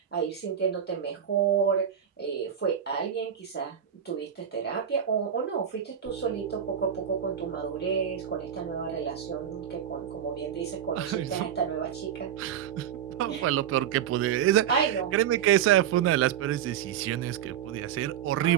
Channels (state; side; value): quieter; left; 9.2 dB